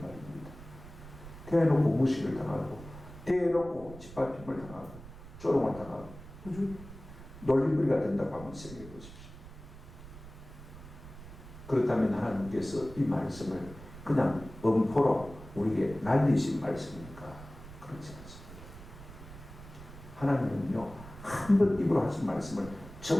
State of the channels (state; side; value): noise; right; rumble, 16 dB below the sound